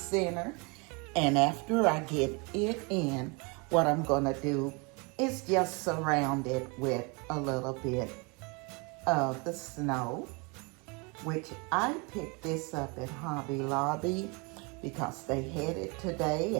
And after I get it in, what I'm gonna do is just surround it with a little bit of the snow, which I picked this up at Hobby Lobby because they had it today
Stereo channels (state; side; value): quieter; left; 30.3 dB